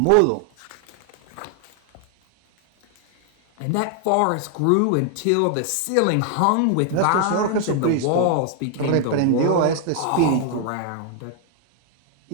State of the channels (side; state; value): both; different; correlation 0.00